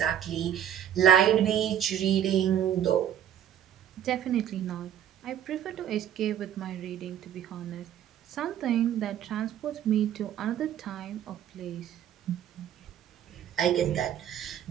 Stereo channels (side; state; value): left; quieter; 10.2 dB